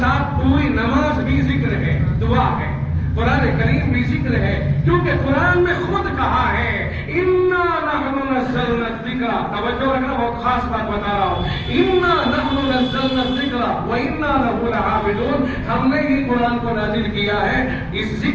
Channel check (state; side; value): identical; both; correlation 1.00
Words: پوری نماز بھی ذکر ہے، دعا ہے، قرآن کریم بھی ذکر ہے، کیونکہ قرآن میں خود کہا ہے اِنَّا نَحْنُ نَزَّلْنَا الذِّكْرَ، توجہ رکھنا، بہت خاص بات بتا رہا ہوں، اِنَّا نَحْنُ نَزَّلْنَا الذِّكْرَ وَإِنَّا لَهُ لَحَافِظُونَ، ہم نے ہی قرآن کو نازل کیا ہے، اس